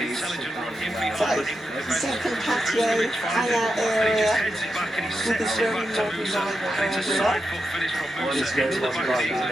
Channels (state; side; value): normal; both; correlation 0.87